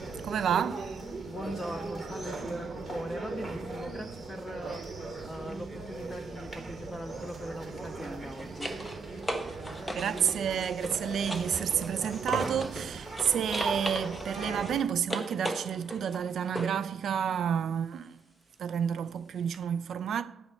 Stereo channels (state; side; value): quieter; left; 5.7 dB